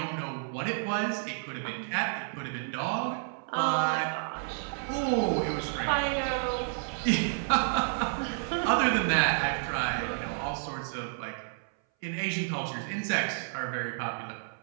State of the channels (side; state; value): left; silent; 57 dB below the other